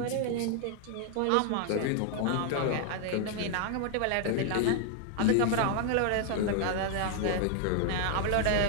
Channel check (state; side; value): different; both; correlation 0.00